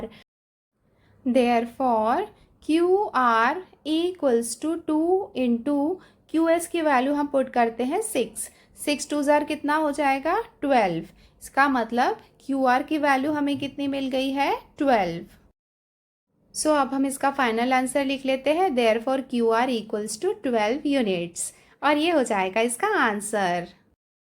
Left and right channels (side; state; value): both; identical; correlation 1.00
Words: Therefore QR equals to 2 into QS की वैल्यू हम पुट करते हैं 6 6 2 जार कितना हो जाएगा 12। इसका मतलब QR की वैल्यू हमें कितनी मिल गई है 12। सो अब हम इसका फाइनल आंसर लिख लेते हैं therefore QR equals to 12 units, और ये हो जाएगा इसका आंसर।